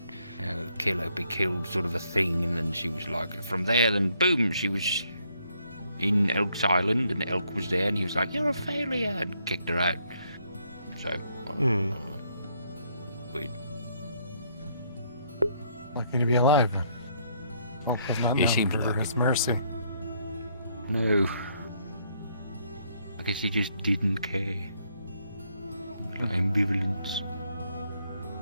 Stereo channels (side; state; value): both; inverted; correlation -0.71